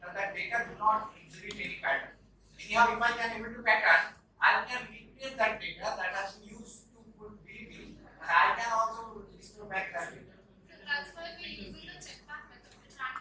that that data do not exhibit any pattern. Anyhow, if I can able to pattern, I can recreate that data that has been used to put DB, and I can also restore back that data. So that's why we're using the check back method, which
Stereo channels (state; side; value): identical; both; correlation 1.00